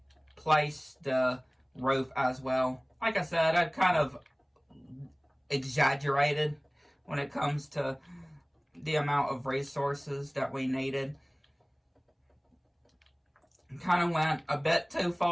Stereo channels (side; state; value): both; identical; correlation 1.00